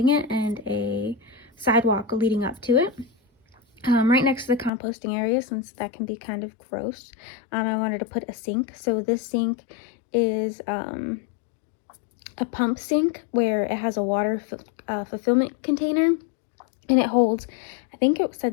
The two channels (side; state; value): right; drops out; at 4.7 s